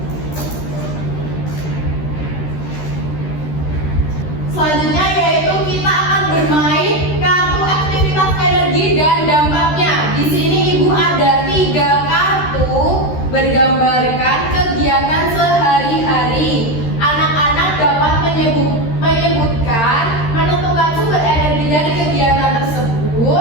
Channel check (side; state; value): right; late; 13 ms